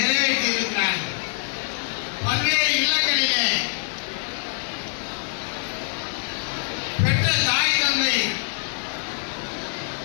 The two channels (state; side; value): silent; right; digital silence